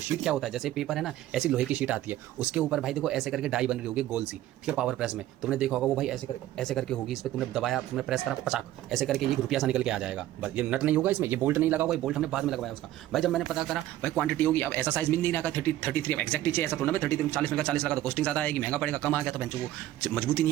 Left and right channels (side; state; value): left; quieter; 14.0 dB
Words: क्या होता है, जैसे पेपर है ना, ऐसी लोहे की शीट आती है, उसके ऊपर भाई देखो ऐसे करके डाई बन रही होगी गोल सी, ठीक है। पावर प्रेस में तुमने देखा होगा वो भाई ऐसे करके होगी। इस पर तुमने दबाया, तुमने प्रेस करा, पचाक ऐसे करके ये रुपया सा निकल के आ जाएगा। बस ये नट नहीं होगा इसमें, ये बोल्ट नहीं लगा होगा, ये बोल्ट हमने बाद में लगवाया उसका। भाई जब मैंने पता करा भाई क्वांटिटी होगी, अब ऐसा साइज मिल नहीं रहा, 33 एक्जैक्ट चाहिए, ऐसा थोड़ा मैं 33 40 में का 40 लगा तो कॉस्टिंग ज़्यादा आएगी, महंगा पड़ेगा। कम आ गया तो बेंचो वो मजबूती नहीं